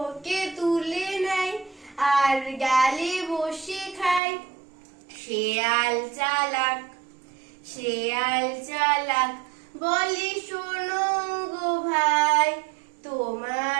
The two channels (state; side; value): drops out; left; at 4.2 s